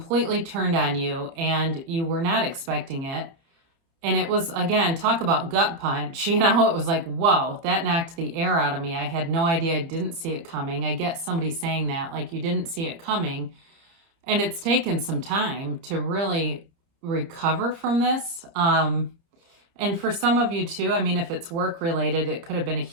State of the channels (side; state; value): left; late; 30 ms